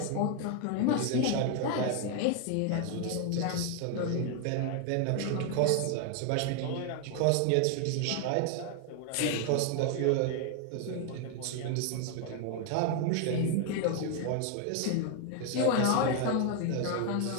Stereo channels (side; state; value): both; different; correlation 0.00